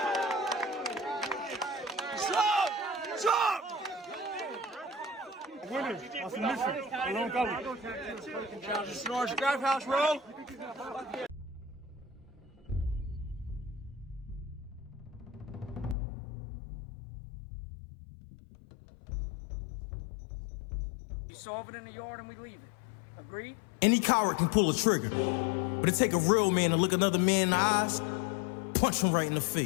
Stop! Winning. On submission. Alone cover. Snores, grab house roll. We solve it in the yard and we leave it. Agreed? Any coward can pull a trigger, but it take a real man to look another man in the eyes, punch him right in the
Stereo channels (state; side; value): drops out; right; at 16.0 s